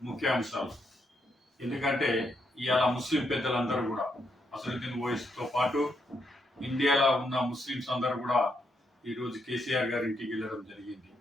ముఖ్యాంశాలు. ఎందుకంటే ఇవాళ ముస్లిం పెద్దలందరూ కూడా అసదుద్దీన్ ఓవైసీతో పాటు ఇండియాలో ఉన్న ముస్లిమ్స్ అందరూ కూడా ఈరోజు కేసీఆర్ గారి ఇంటికి వెళ్ళడం జరిగింది.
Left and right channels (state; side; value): normal; both; correlation 0.78